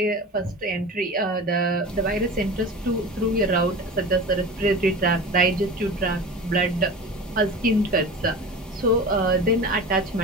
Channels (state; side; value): normal; both; correlation 0.33